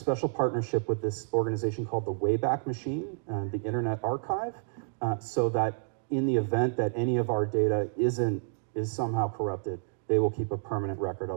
partnership with this organization called the Wayback Machine, the Internet Archive, so that in the event that any of our data is somehow corrupted, they will keep a permanent record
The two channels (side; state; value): left; silent; digital silence